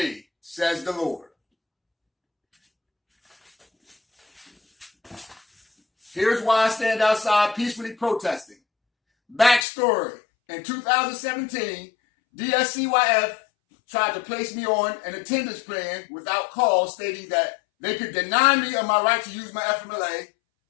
says the Lord. Here's why I stand outside peacefully protesting. Backstory. In 2017, Dscyf tried to place me on an attendance plan without cause, stating that they could deny me of my right to use my FMLA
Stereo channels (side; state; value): right; drops out; at 9.7 s